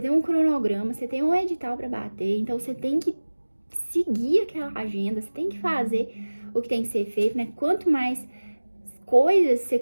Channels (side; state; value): both; inverted; correlation -1.00